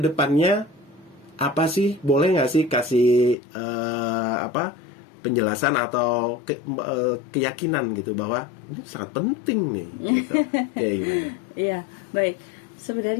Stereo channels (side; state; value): right; drops out; at 3.4 s